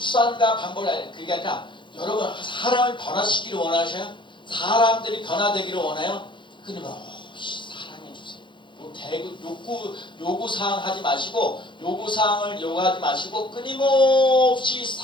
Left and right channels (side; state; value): right; late; 0.23 ms